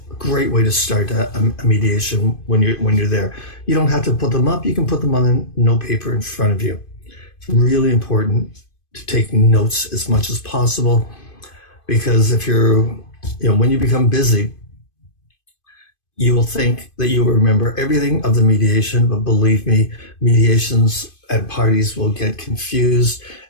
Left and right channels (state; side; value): late; right; 2.5 ms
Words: Great way to start a mediation when you're there. You don't have to put them up. You can put them on a note paper in front of you. It's really important to take notes as much as possible, because if when you become busy, you will think that you will remember everything of the mediation, but believe me, mediations and parties will get confused,